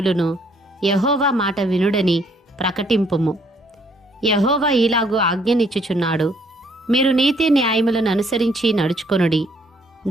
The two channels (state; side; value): normal; both; correlation 0.66